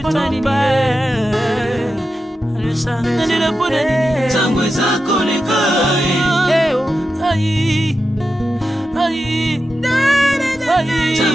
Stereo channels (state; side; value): normal; both; correlation 0.90